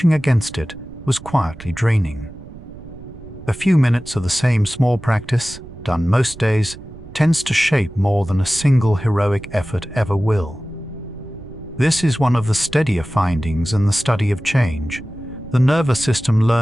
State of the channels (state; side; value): noise; right; rumble, 17 dB below the sound